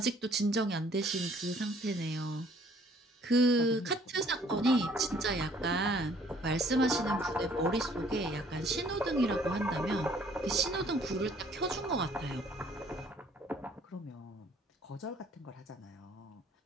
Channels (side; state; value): both; normal; correlation 0.59